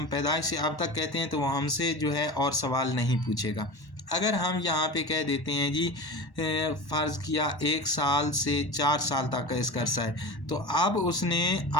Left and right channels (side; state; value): right; late; 1.1 ms